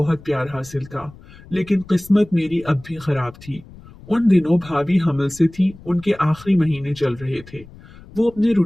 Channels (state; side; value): noise; left; rumble, 21 dB below the sound